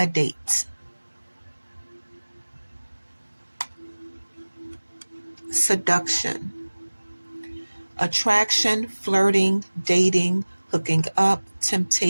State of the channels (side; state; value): both; inverted; correlation -1.00